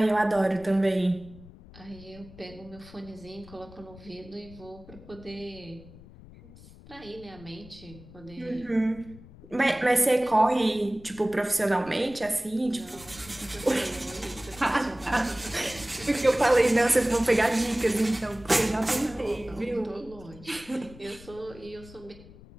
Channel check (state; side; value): noise; left; rumble, 19 dB below the sound